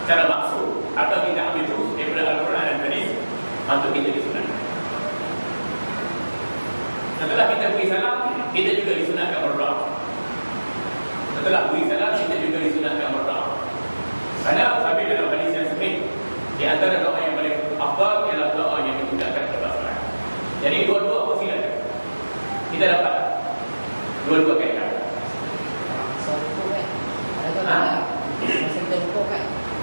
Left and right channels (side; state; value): both; inverted; correlation -1.00